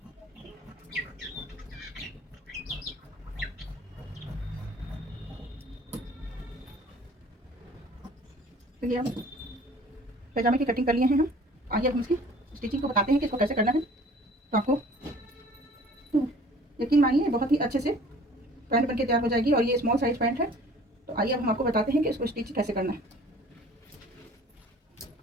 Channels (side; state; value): both; normal; correlation 0.50